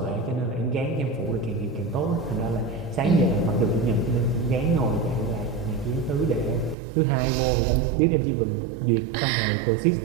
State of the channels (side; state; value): left; drops out; at 6.8 s